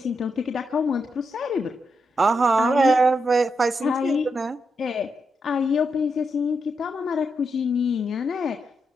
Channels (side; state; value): both; normal; correlation 0.84